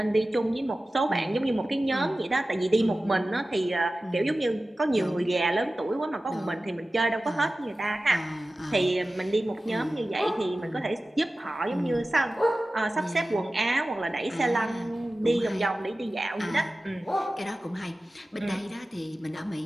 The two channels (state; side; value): normal; both; correlation 0.96